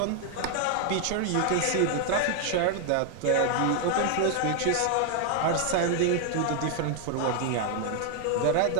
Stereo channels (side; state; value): both; different; correlation 0.00